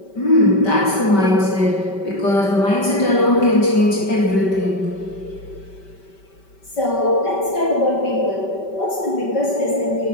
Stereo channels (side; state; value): right; late; 5.2 ms